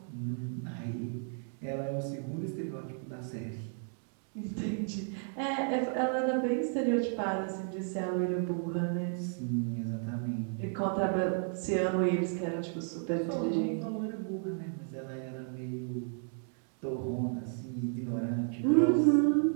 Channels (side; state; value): left; silent; 56 dB below the other